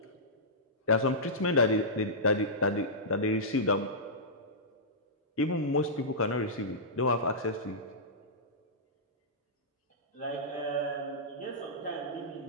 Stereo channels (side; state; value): both; normal; correlation -0.15